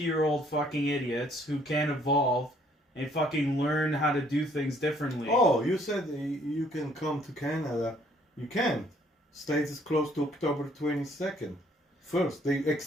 fucking idiots who can't evolve and fucking learn how to do things differently. Oh, you said you can come to Canada. You can't. States is closed to October 22nd. First, they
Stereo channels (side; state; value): both; normal; correlation 0.63